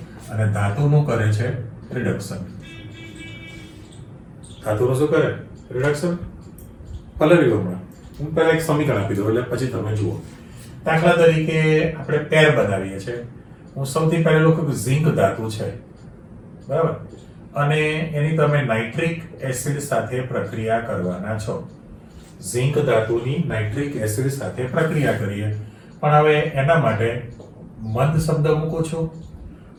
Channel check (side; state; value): both; identical; correlation 1.00